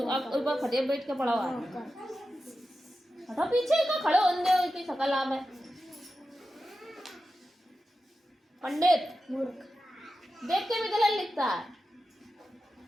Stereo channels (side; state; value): both; normal; correlation 0.92